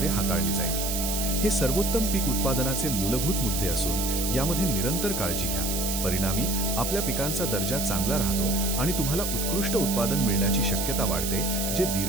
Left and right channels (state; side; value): noise; right; hiss, 2 dB below the sound